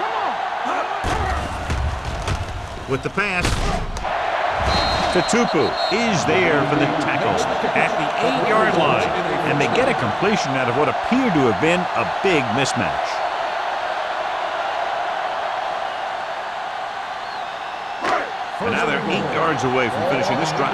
With the pass, Tutupu is there for the tackle at the 8-yard line. And they get a completion out of what appeared to have been a big mismatch. And now they're 8 yards away from finishing this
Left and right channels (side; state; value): both; identical; correlation 1.00